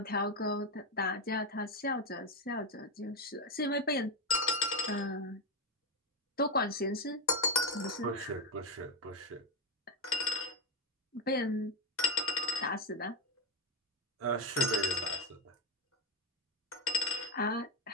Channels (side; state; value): both; normal; correlation 0.11